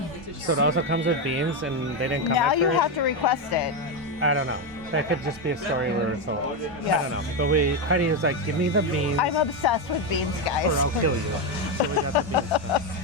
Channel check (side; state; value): both; normal; correlation 0.09